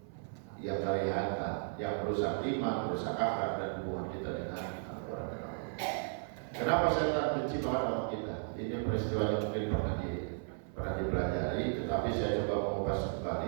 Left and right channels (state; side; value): silent; left; 54 dB below the other